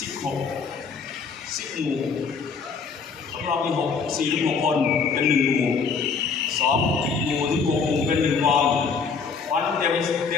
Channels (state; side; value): quieter; right; 5.4 dB